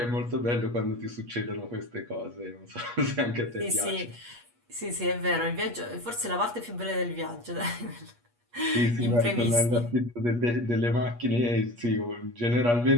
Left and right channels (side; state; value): left; late; 8.4 ms